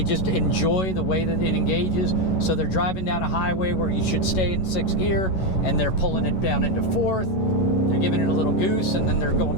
just enjoy the way that it engages. So they're driving down a highway where you should stay in 6th gear, and they're pulling it down into 4th. They're giving it a little goose, and then they're going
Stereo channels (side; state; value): right; late; 11 ms